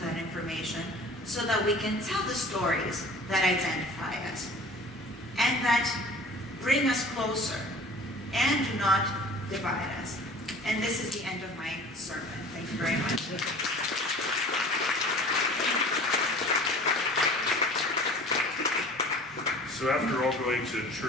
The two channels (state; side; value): normal; both; correlation 0.45